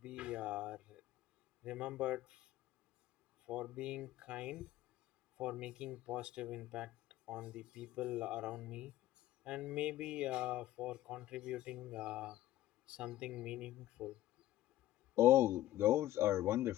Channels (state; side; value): quieter; right; 14.3 dB